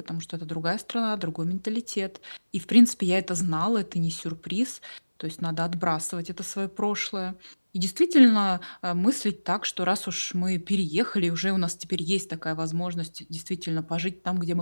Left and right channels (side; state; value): both; inverted; correlation -1.00